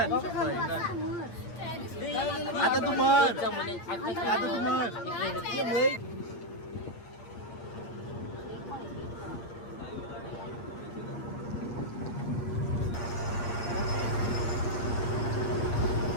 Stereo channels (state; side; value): late; right; 8.6 ms